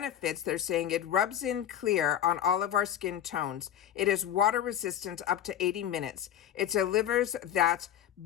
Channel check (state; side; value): quieter; right; 10.5 dB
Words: they're saying it rubs in clear on all of our skin tones. It is water resistant up to 80 minutes. It delivers that